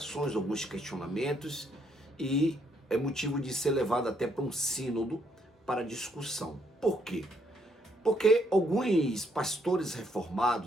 alguns questionamentos, e é motivo de ser levado até para um sínodo para discussão. Por quê? Porque alguns pastores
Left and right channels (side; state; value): both; normal; correlation 0.71